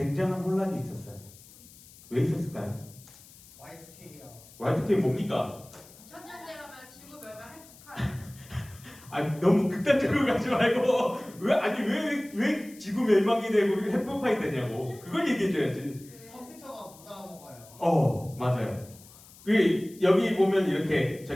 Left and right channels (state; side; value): noise; left; hiss, 22 dB below the sound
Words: 혼란이 있었어요. 왜 있었을까요? Y2K요. Y2K 뭡니까? 2000년대 가면 지구 멸망 핵폭탄. 아니 너무 극단적으로 가지 말고 왜 지구 멸망이 되고 핵폭탄이 되냐고 그걸 얘기해줘야지. 컴퓨터가 못 알아먹어요. 맞아요. 여기 보면 이렇게